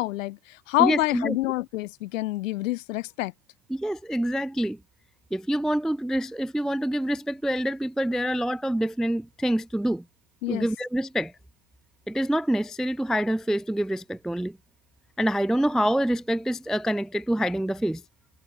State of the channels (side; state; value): both; normal; correlation 0.79